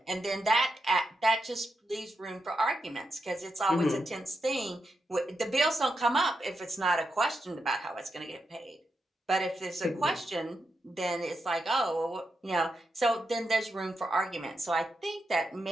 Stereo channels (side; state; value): both; normal; correlation 0.85